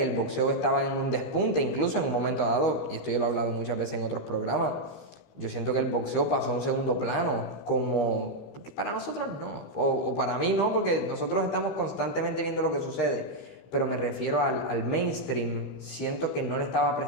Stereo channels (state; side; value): late; right; 15 ms